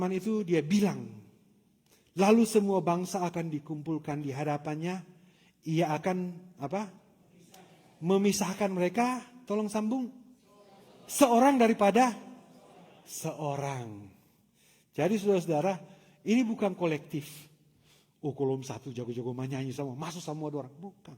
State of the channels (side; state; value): both; identical; correlation 1.00